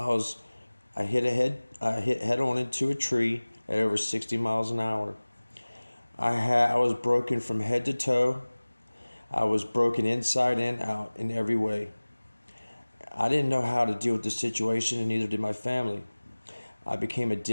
hit head on into a tree at over 60 miles an hour. I was broken from head to toe. I was broken inside and out in every way. I didn't know how to deal with the situation, and neither did my family. I became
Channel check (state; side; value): inverted; both; correlation -1.00